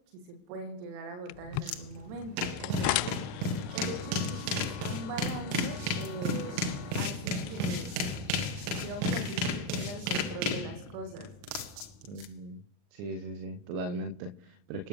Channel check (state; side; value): late; left; 39 ms